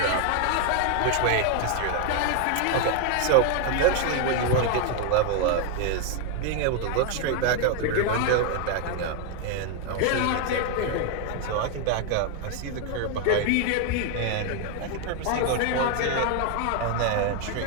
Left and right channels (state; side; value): different; both; correlation 0.01